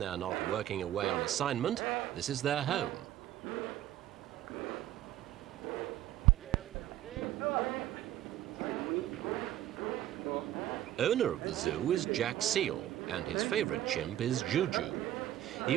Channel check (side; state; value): left; quieter; 13.0 dB